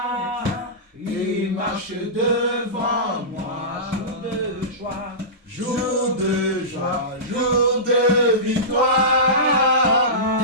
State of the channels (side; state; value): both; normal; correlation -0.19